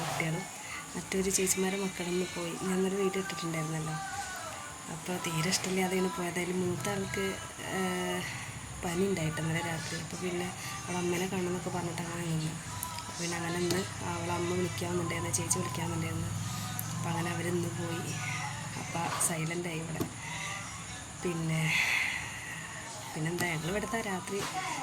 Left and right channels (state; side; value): identical; both; correlation 1.00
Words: കുട്ടികളും. മറ്റൊരു ചേച്ചിമാരെ മക്കളൊന്ന് പോയി. ഞാനൊരു വീഡിയോ ഇട്ടിട്ടുണ്ടായിരുന്നല്ലോ. അപ്പോൾ തീരെ ഇഷ്ടമില്ലാതെയാണ് പോയത്. അതിൽ മൂത്ത ആൾക്ക് പനി ഉണ്ടായിട്ട് ഇന്നലെ രാത്രി. അപ്പോൾ പിന്നെ അവളെ അമ്മേനെ കാണണമെന്നൊക്കെ പറഞ്ഞിട്ട് അങ്ങനെ നിന്ന്. അപ്പോൾ പിന്നെ അങ്ങനെ ഇന്ന് അവളെ അമ്മ വിളിക്കാമെന്നുണ്ടായിരുന്നു, ചേച്ചി വിളിക്കാമെന്നുണ്ടായിരുന്നു. അപ്പോൾ അങ്ങനെ അവരിന്ന് പോയി. അപ്പോൾ സൈലൻ്റായി ഇവിടെ. പിന്നെന്താ, ഞങ്ങൾ ഇവിടുത്തെ രാത്രി